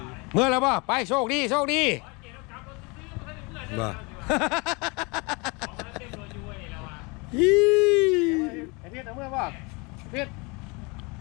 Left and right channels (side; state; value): right; quieter; 28.7 dB